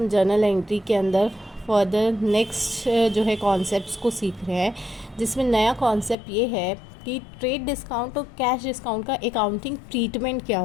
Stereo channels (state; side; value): drops out; right; at 6.2 s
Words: जर्नल एंट्री के अंदर फर्दर नेक्स्ट जो है कॉन्सेप्ट्स को सीख रहे हैं, जिसमें नया कॉन्सेप्ट ये है कि ट्रेड डिस्काउंट और कैश डिस्काउंट का अकाउंटिंग ट्रीटमेंट क्या